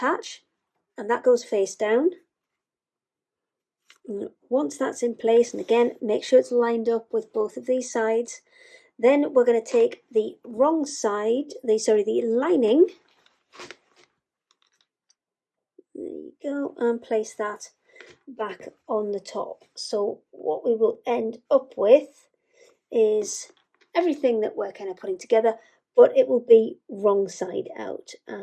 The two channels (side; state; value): both; identical; correlation 1.00